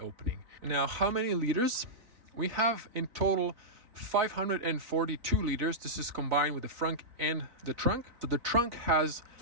Now, how many liters? We have in total 542 liters. This is combined with the frunk and the trunk. So the trunk has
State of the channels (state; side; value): late; left; 4.0 ms